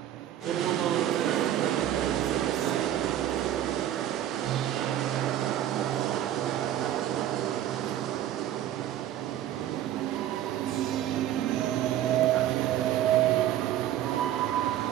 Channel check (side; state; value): left; quieter; 11.9 dB